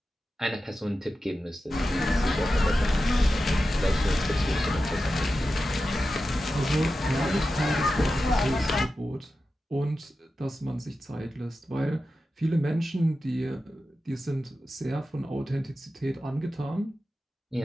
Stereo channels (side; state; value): both; normal; correlation 0.92